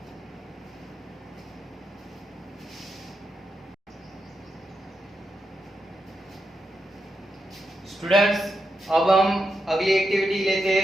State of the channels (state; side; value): normal; both; correlation 0.86